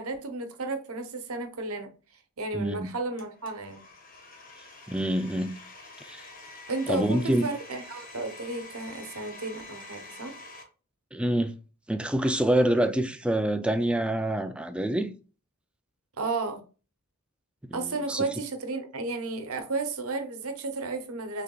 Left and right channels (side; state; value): both; normal; correlation 0.58